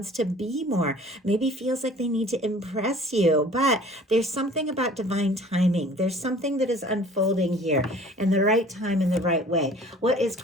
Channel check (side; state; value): both; normal; correlation 0.49